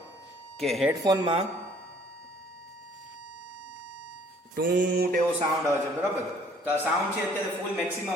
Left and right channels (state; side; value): normal; both; correlation 0.58